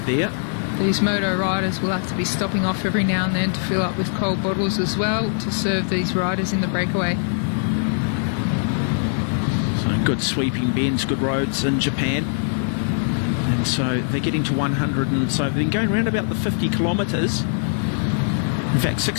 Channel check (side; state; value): right; silent; digital silence